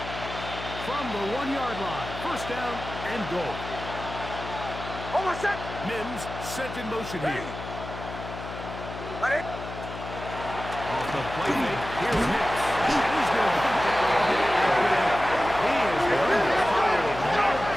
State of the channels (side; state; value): left; noise; hum, 10 dB below the sound